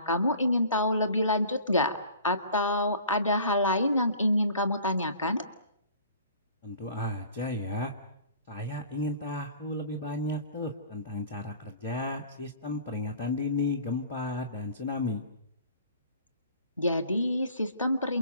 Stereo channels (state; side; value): inverted; both; correlation -0.46